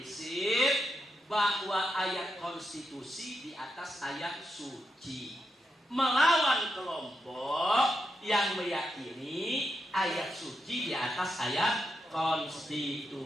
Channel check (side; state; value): both; normal; correlation 0.85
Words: bahwa ayat konstitusi di atas ayat suci, melawan kelompok yang meyakini ayat suci di atas ayat